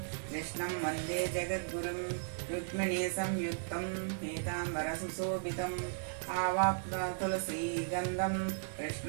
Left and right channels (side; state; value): left; silent; digital silence